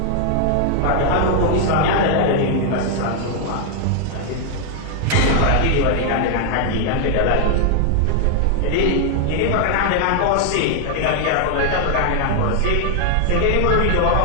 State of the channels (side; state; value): both; different; correlation 0.00